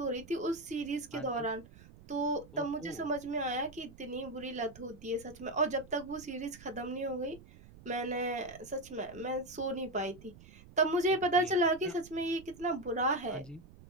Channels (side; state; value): right; noise; rumble, 20 dB below the sound